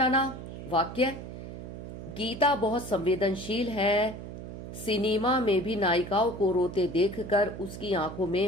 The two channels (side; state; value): right; noise; hum, 10 dB below the sound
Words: वाक्य, गीता बहुत संवेदनशील है, सिनेमा में भी नायिकाओं को रोते देखकर उसकी आंखों